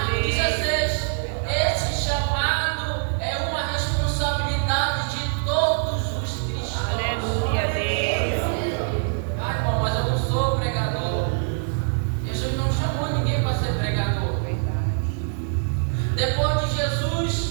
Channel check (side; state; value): left; silent; digital silence